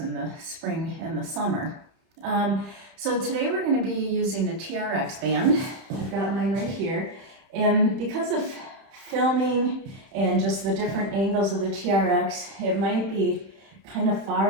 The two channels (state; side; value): late; left; 31 ms